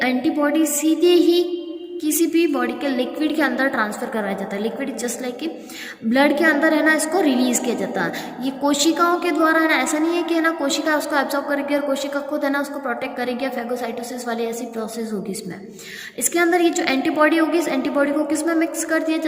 एंटीबॉडी सीधे ही किसी भी बॉडी के लिक्विड के अंदर ट्रांसफ़र करवाया जाता है। लिक्विड जस्ट लाइक कि ब्लड के अंदर है ना, इसको रिलीज़ किया जाता है। ये कोशिकाओं के द्वारा है ना, ऐसा नहीं है कि है ना कोशिका उसको एब्जॉर्ब करेगी और कोशिका खुद है ना उसको प्रोटेक्ट करेगी, या फैगोसाइटोसिस वाली ऐसी प्रोसेस होगी इसमें। इसके अंदर ये जो एंटीबॉडी होगी, इस एंटीबॉडी को किस में मिक्स कर दिया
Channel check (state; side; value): identical; both; correlation 1.00